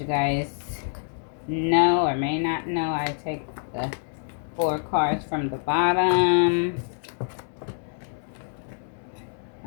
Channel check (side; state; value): right; silent; digital silence